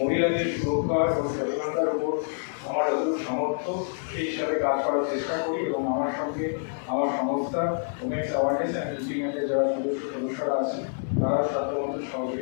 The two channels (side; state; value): right; silent; 60 dB below the other